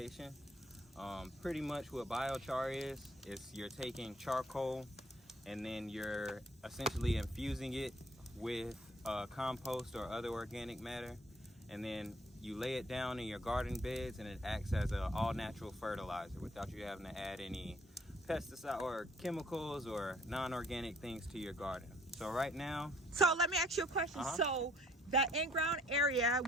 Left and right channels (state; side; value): normal; both; correlation 0.61